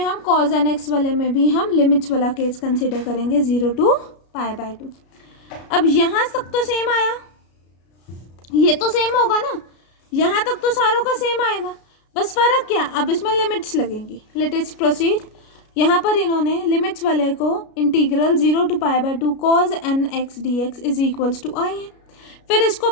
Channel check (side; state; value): right; late; 33 ms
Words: हम कॉज एन एक्स वाले में भी हम लिमिट्स वाला केस कंसिडर करेंगे 0 to π/2। अब यहाँ तक तो सेम आया, ये तो सेम होगा ना, यहाँ तक तो सारों का सेम आएगा, बस फ़र्क क्या, अब इसमें लिमिट्स लगेंगी। Let us proceed. यहाँ पर इन्होंने लिमिट्स वाले को integral 0 to π/2 cos n x dx is equals to I है, फिर इसको